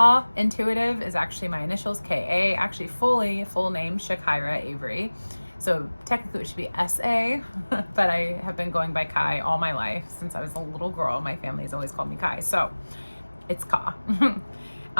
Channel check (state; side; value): inverted; both; correlation -1.00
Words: Intuitive is actually my initials, KA, actually full name, Shakira Avery. So technically it should be SA, but I have been going by Kai all my life. Since I was a little girl, my family's always called me Kai. So it's Ka.